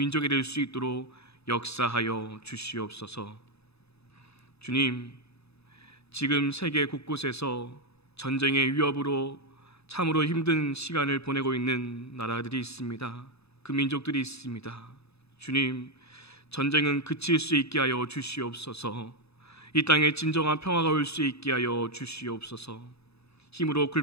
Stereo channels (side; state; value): right; late; 0.79 ms